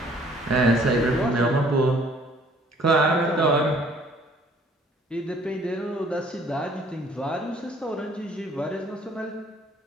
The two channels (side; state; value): both; normal; correlation 0.58